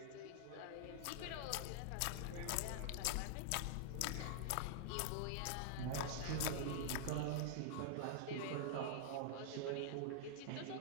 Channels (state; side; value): different; both; correlation -0.01